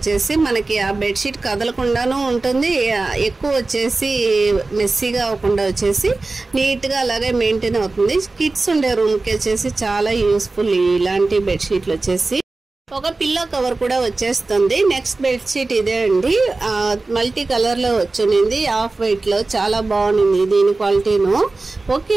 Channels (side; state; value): left; quieter; 3.4 dB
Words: మనకి ఆ బెడ్షీట్ కదలకుండానూ ఉంటుంది, ఎక్కువ వచ్చేసి మెస్సీగా అవ్వకుండా వచ్చేసి నీట్గా అలాగే మెయింటైన్ అవుతుంది. కిడ్స్ ఉండే రూమ్కి వచ్చేసి చాలా యూస్ఫుల్ ఇలాంటి బెడ్షీట్లు వచ్చేసి. ఒక పిల్లో కవర్ కూడా వచ్చేస్తుంది. నెక్స్ట్ బెడ్షీట్ ఇదే అండి, మల్టీ కలర్లో వచ్చింది, ఆఫ్ వైట్లో. చాలా బాగుంది దీని క్వాలిటీను. ఓకే